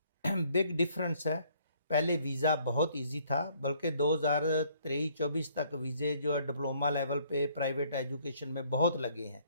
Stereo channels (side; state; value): both; inverted; correlation -0.63